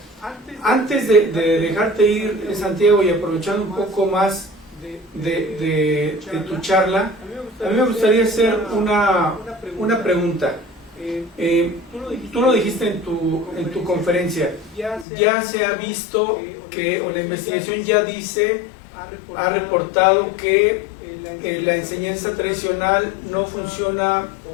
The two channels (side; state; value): right; drops out; at 15.1 s